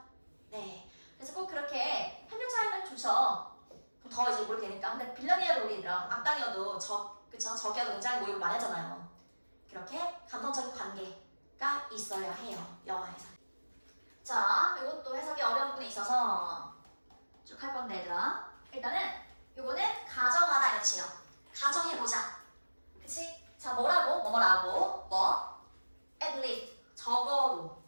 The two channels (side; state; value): both; inverted; correlation -1.00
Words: 네. 그래서 꼭 그렇게 협력자이면 좋죠. 그럼 더 이제 모르게 되니까. 근데 빌런이어도 우리 얘들아, 악당이어도 적이어도 굉장히 모욕을 많이 하잖아요. 그렇게 감정적인 관계가 있어야 해요. 영화에서. 자, 이것도 해석이 어려운 부분이 있어서 쭉 할 건데 얘들아. 일단은 요거는 가정하다 이런 뜻이에요. 가정해보자. 그치? 자, 뭐라고? at least. 적어도.